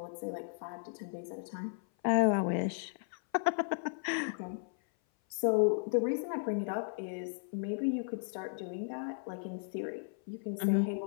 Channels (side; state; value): right; silent; 54 dB below the other